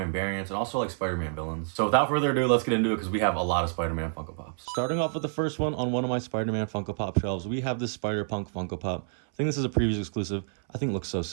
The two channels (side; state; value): left; silent; 58 dB below the other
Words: variants, and also like Spider-Man villains. So without further ado, let's get into it because we have a lot of Spider-Man Funko Pops. Starting off with the first one on one of my Spider-Man Funko Pop shelves, we have this Spider-Punk Funko Pop. I think this is a previous exclusive. I think it looks so